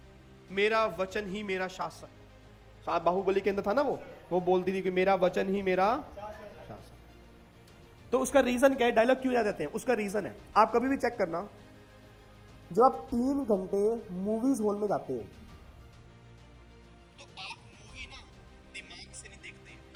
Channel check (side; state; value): both; identical; correlation 1.00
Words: मेरा वचन ही मेरा शासक, शायद बाहुबली के अंदर था ना, वो बोलती थी कि मेरा वचन ही मेरा शासक। तो उसका रीजन क्या है, डायलॉग क्यों याद रहते हैं? उसका रीजन है, आप कभी भी चेक करना, जब आप 3 घंटे मूवीज हॉल में जाते हो तो आप मूवी ना दिमाग से नहीं देखते,